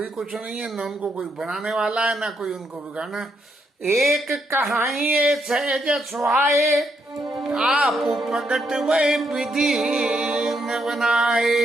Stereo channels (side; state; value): both; normal; correlation 0.77